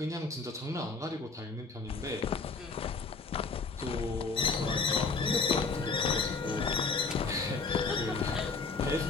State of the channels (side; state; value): right; quieter; 4.3 dB